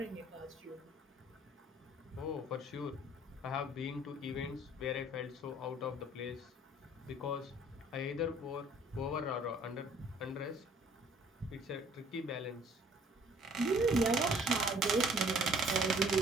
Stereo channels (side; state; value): both; normal; correlation 0.57